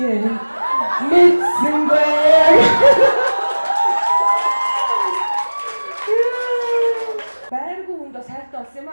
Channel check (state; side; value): inverted; both; correlation -1.00